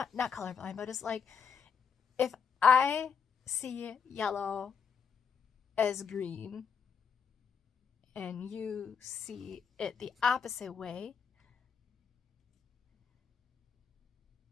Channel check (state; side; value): quieter; right; 6.7 dB